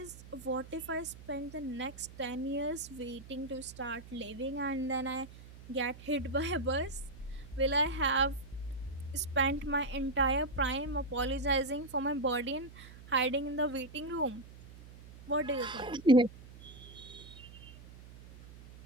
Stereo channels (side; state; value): right; noise; hum, 17 dB below the sound